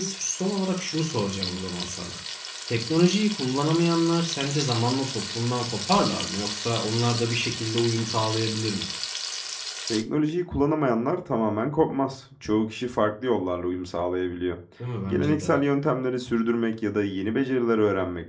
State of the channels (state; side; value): identical; both; correlation 1.00